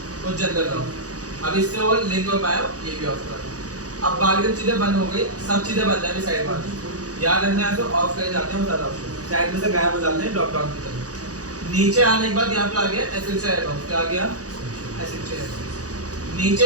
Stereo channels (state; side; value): late; left; 0.67 ms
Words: और जनरल ऑफ। अब इससे वो लिंक हो पाया, ये भी ऑफ कर। अब बाकी चीजें बंद हो गई, सब चीजें बंद है साइड में, याद रखना है तो ऑफ कर जाते हैं सारा ऑप्शन, साइड में से गायब हो जाते हैं ड्रॉप डाउन की तरफ। नीचे आने के बाद यहाँ पे आ गया एसेंशियल एडॉन, क्या आ गया एसेंशियल एडॉन।